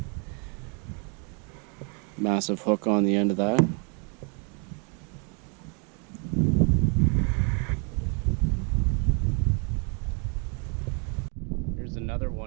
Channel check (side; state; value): left; quieter; 36.6 dB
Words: Massive hook on the end of that. Here's another